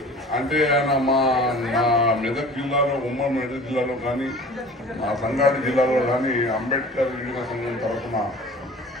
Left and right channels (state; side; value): normal; both; correlation 0.43